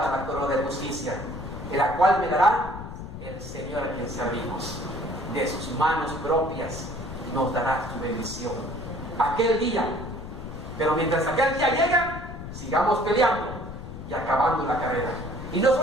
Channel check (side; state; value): left; noise; rumble, 10 dB below the sound